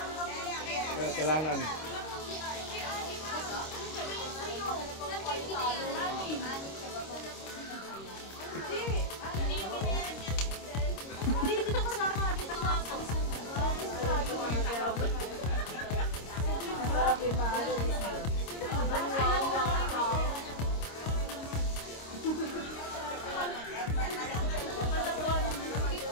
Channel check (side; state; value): right; late; 26 ms